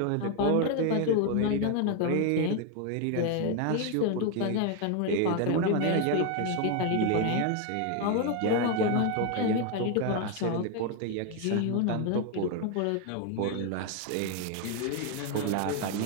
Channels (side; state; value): both; different; correlation 0.01